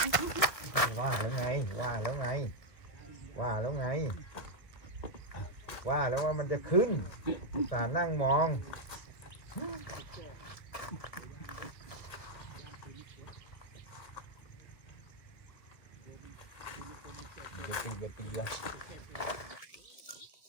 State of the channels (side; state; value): right; late; 2.0 ms